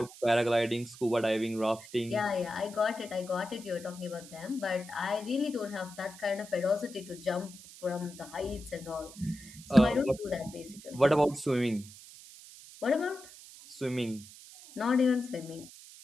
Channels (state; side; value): noise; right; hiss, 18 dB below the sound